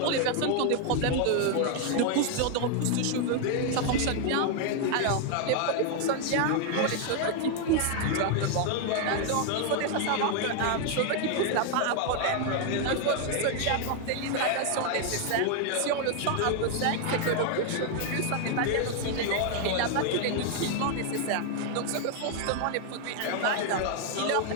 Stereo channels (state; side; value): different; both; correlation 0.00